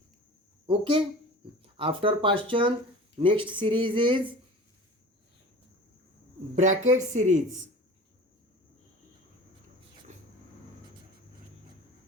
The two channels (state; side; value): normal; both; correlation 0.39